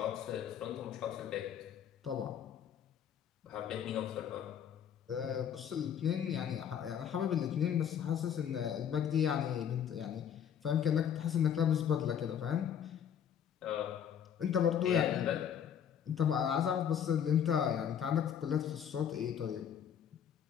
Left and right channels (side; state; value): right; quieter; 8.7 dB